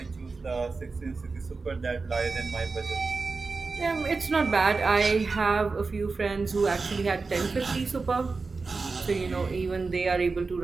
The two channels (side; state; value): left; quieter; 4.2 dB